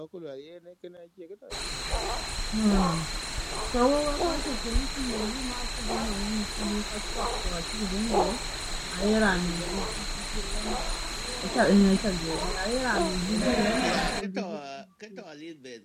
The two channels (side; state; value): both; identical; correlation 1.00